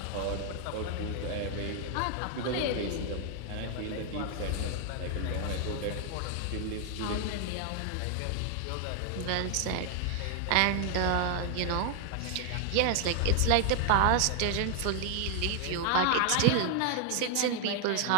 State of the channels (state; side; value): different; both; correlation 0.00